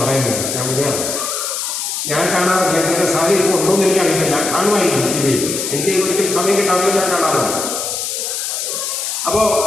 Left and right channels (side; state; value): left; noise; hiss, 3 dB below the sound